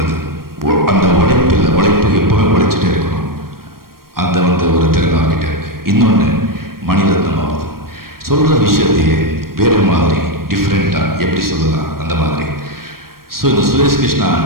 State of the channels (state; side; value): late; left; 0.93 ms